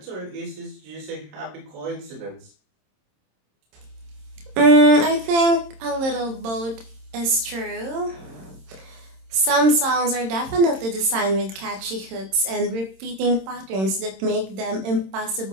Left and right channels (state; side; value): late; left; 26 ms